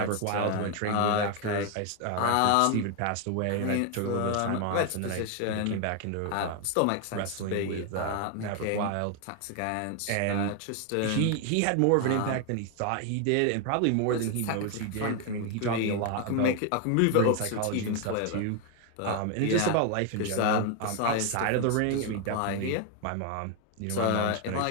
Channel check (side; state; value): both; different; correlation 0.01